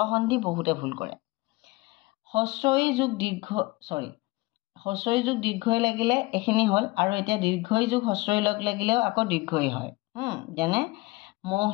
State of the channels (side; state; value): right; quieter; 22.4 dB